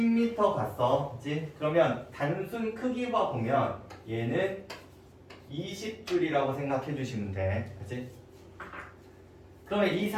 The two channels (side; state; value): both; identical; correlation 1.00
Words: 갔어. 그치? 그러면 단순 크기와 보면 얘는 20줄이라고 생각해 주시면 돼. 그치? 그러면 이